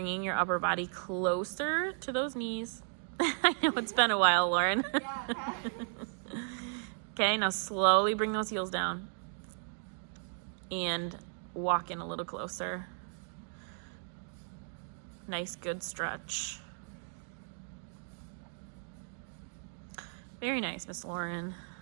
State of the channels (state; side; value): silent; left; 54 dB below the other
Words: your upper body closer to those knees. I know it's been a while, Lauren. Okay, now slowly bring those heels down and walk in a little closer. Nice, good stretch. Very nice, Miss Lauren.